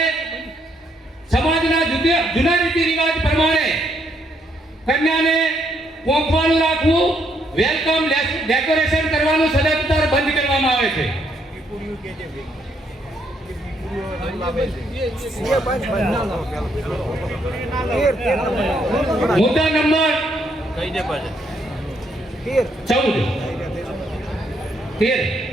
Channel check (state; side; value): normal; both; correlation 0.73